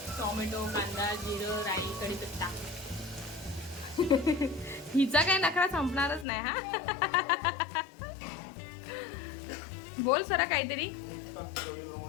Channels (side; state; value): right; drops out; at 6.2 s